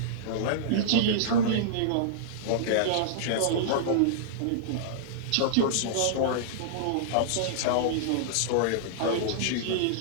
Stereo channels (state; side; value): different; both; correlation -0.02